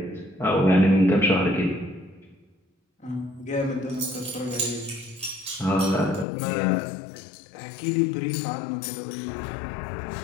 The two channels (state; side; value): drops out; right; at 6.2 s